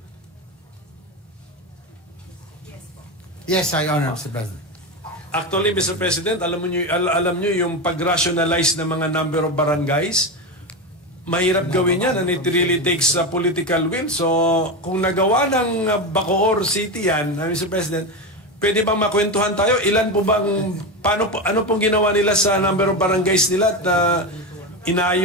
Yes, I honor, Mr. President. Actually, Mr. President, alam nyo yung pag-rationalize ng mga number of barangays, mahirap gawin yan and it really takes a political will. So, kung nagawa ng Bacoor City yan, Mr. President, pwede bang makwentuhan tayo? Ilan po bang, ano pong ginawa nila sa number of barangays nila at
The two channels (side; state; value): both; normal; correlation 0.17